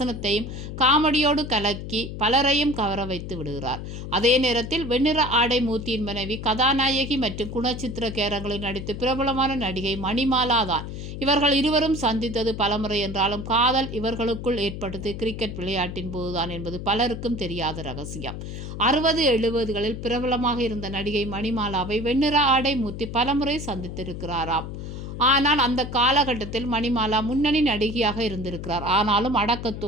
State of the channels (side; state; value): left; noise; hum, 8 dB below the sound